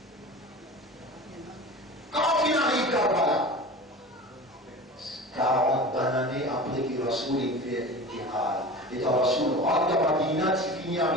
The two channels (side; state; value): both; normal; correlation 0.35